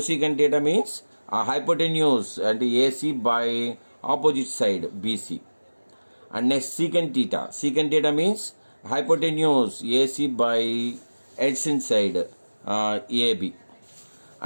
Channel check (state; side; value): inverted; both; correlation -1.00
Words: theta means hypotenuse and AC by opposite side BC. And next secant theta. Secant theta means hypotenuse AC by adjacent side AB.